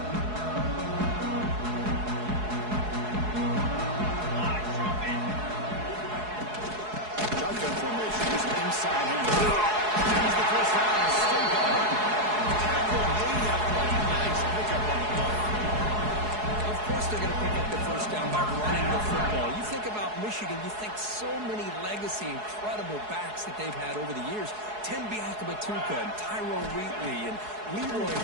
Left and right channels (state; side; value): late; left; 4.7 ms